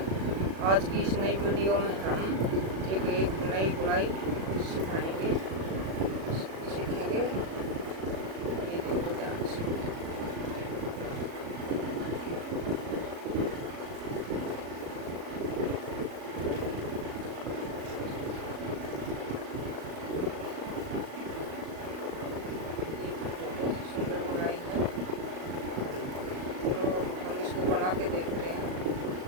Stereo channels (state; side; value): late; left; 37 ms